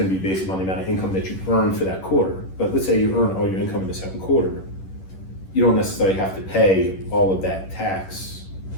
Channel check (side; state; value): right; late; 11 ms